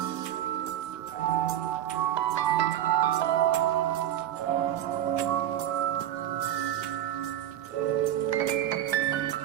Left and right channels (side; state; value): left; quieter; 11.7 dB